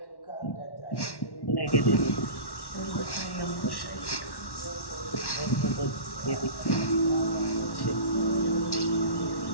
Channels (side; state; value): right; late; 1.1 ms